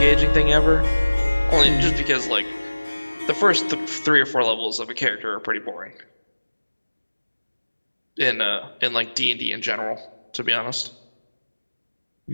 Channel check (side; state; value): both; inverted; correlation -1.00